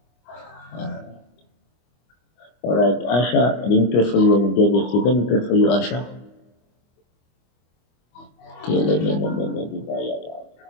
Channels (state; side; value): late; right; 25 ms